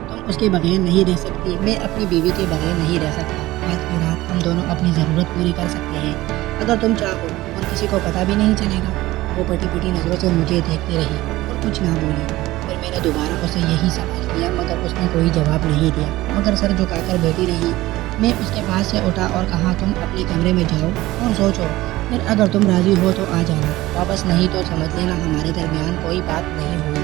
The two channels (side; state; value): left; quieter; 17.6 dB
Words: تم اس کے بغیر نہیں رہ سکتی، میں اپنی بیوی کے بغیر نہیں رہ سکتا۔ آج کی رات ہم دونوں اپنی ضرورت پوری کر سکتے ہیں اگر تم چاہو اور کسی کو پتہ بھی نہیں چلے گا۔ وہ پٹی پٹی نظروں سے مجھے دیکھتی رہی اور کچھ نہ بولی۔ پھر میں نے دوبارہ اسے یہی سوال کیا مگر اس نے کوئی جواب نہیں دیا، مگر سر جھکا کر بیٹھی رہی۔ میں اس کے پاس سے اٹھا اور کہا تم اپنے کمرے میں جاؤ اور سوچو، پھر اگر تم راضی ہو تو آ جانا، واپس نہیں تو سمجھ لینا ہمارے درمیان کوئی بات نہیں ہوئی۔